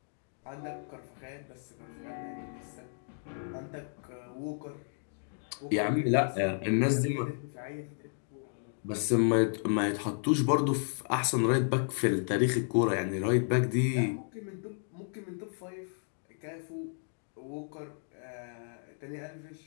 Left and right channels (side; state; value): right; silent; digital silence